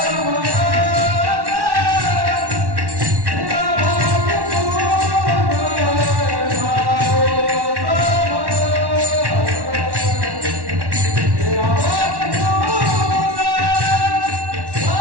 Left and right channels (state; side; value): late; left; 1.1 ms